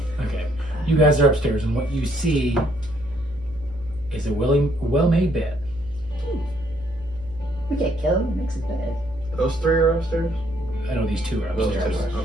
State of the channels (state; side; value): noise; right; hum, 19 dB below the sound